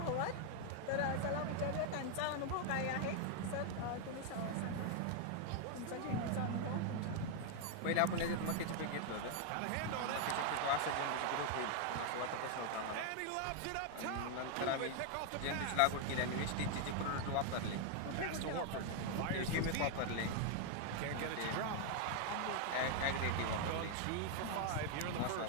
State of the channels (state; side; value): different; both; correlation 0.00